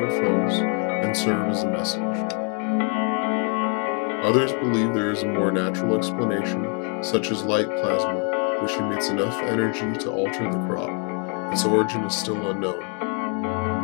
and serve as a message. Others believe there is a more natural explanation, such as light plasma, which emits enough energy to alter the crop. Its origin is still unknown.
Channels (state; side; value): quieter; right; 39.2 dB